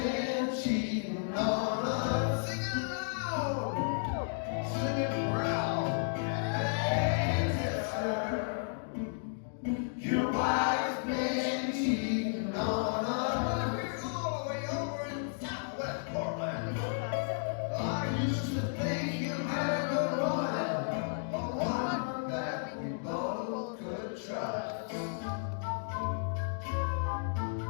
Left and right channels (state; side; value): silent; right; digital silence